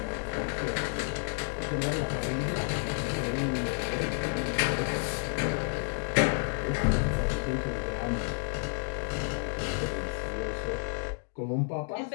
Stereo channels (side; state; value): right; silent; 57 dB below the other